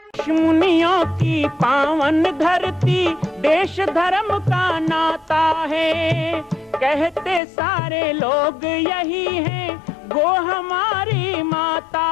ऋषि मुनियों की पावन धरती, देश धर्म का नाता है। कहते सारे लोग यही हैं, गो हमारी माता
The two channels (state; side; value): drops out; right; at 7.4 s